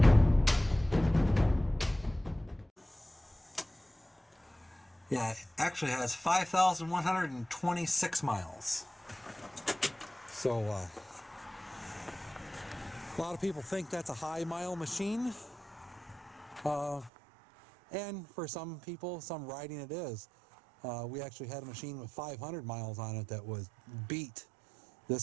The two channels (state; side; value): drops out; left; at 17.1 s